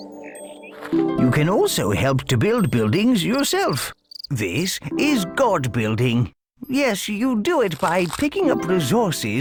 You can also help to build buildings yourself. This is God building. Yes, you do it by picking up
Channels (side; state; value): both; identical; correlation 1.00